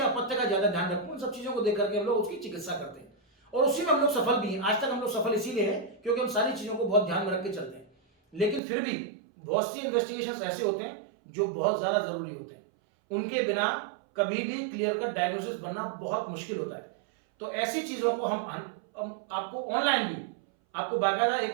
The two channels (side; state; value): left; drops out; at 8.6 s